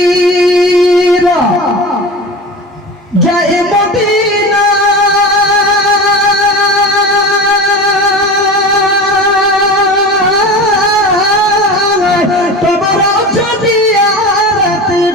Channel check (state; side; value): normal; both; correlation 0.31